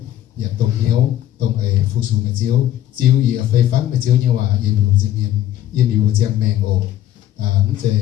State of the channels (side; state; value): right; quieter; 12.4 dB